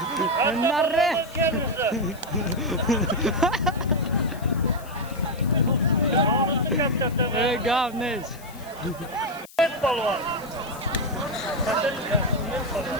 Narre. Gavnes. Met balvan.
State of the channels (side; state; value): left; noise; hiss, 21 dB below the sound